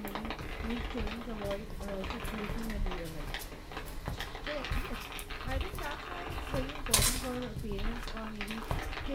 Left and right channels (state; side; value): identical; both; correlation 1.00